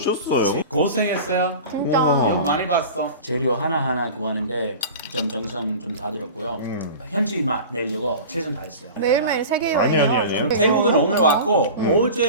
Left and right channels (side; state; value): both; inverted; correlation -0.35